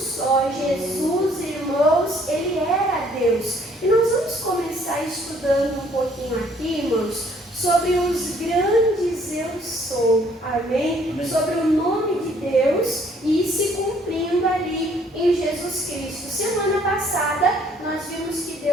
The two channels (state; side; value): normal; both; correlation 0.61